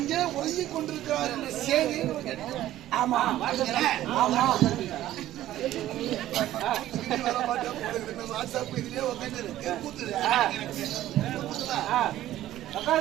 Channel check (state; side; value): quieter; left; 13.8 dB